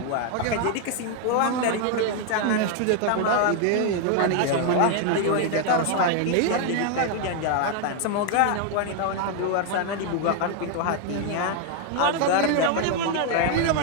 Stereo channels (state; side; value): different; both; correlation 0.01